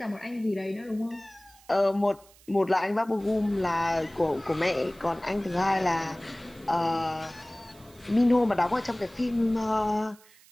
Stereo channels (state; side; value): noise; right; hiss, 26 dB below the sound